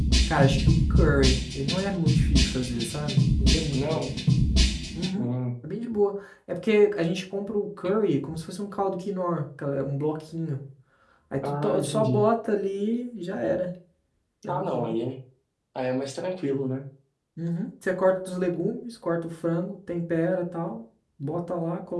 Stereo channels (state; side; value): identical; both; correlation 1.00